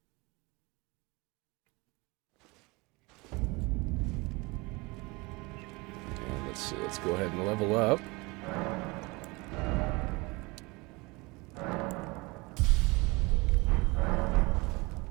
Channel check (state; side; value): quieter; left; 25.1 dB